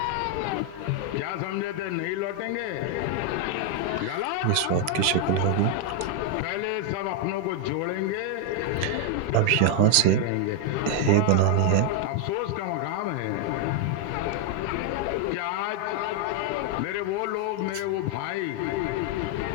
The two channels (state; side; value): different; both; correlation 0.01